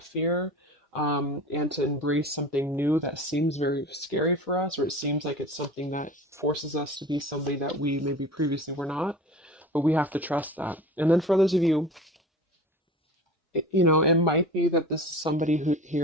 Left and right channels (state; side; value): normal; both; correlation 0.37